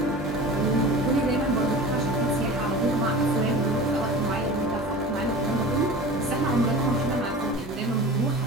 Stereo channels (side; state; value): both; normal; correlation 0.36